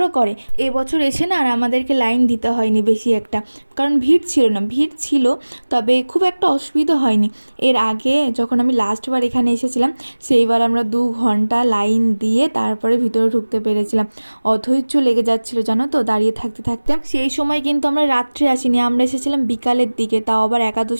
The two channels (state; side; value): inverted; both; correlation -1.00